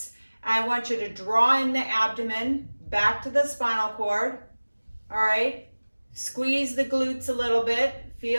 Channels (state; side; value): inverted; both; correlation -1.00